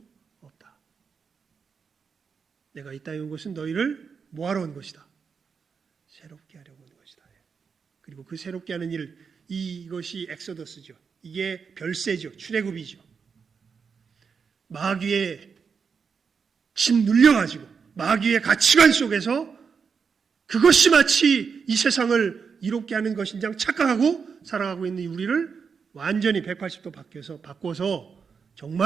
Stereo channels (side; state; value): left; quieter; 5.9 dB